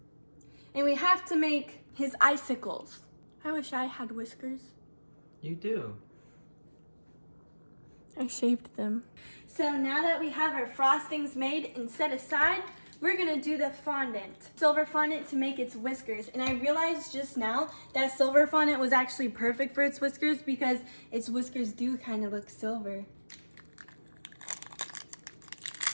and we have to make his icicles. I wish I had whiskers. You do. I shaved them. So now that we have our frostings made and set aside, we're gonna do the fondant. Silver fondant to make its whiskers. And I realized just now that silver fondant was actually perfect for its whiskers because its whiskers do kind of look silver.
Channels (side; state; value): both; inverted; correlation -1.00